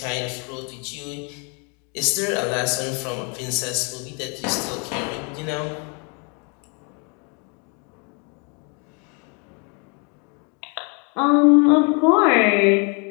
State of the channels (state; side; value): quieter; right; 35.1 dB